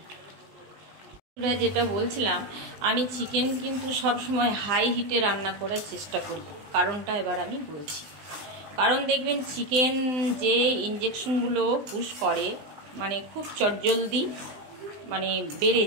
যেটা বলছিলাম, আমি চিকেন কিন্তু সব সময় হাই হিটে রান্না করার চেষ্টা করি, কারণটা এবার আমি বলছি। কারণ দেখবেন চিকেন যে ইঞ্জেকশনগুলো পুশ করে, মানে খুব চটজলদি মানে বেড়ে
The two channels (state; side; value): late; left; 20 ms